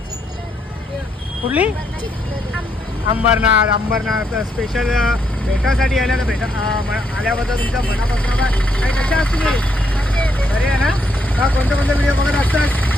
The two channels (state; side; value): normal; both; correlation 0.75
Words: अंबरनाथ स्पेशल भेटासाठी आल्या तर आल्याबद्दल तुमच्या मनापासून काय कशा असतील बरे आहे ना कोणते व्हिडिओ बघत असतात